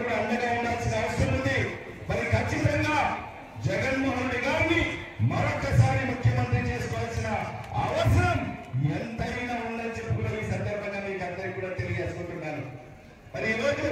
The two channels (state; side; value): identical; both; correlation 1.00